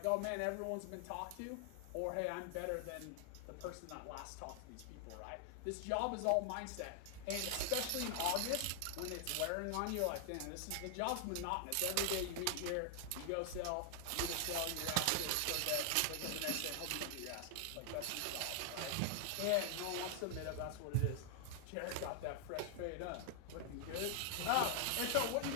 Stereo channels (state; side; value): different; both; correlation 0.00